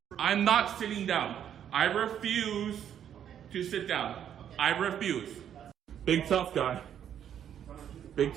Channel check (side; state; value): left; quieter; 9.5 dB